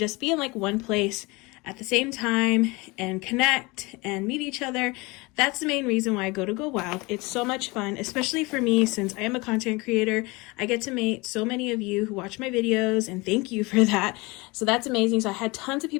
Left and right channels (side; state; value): right; quieter; 24.9 dB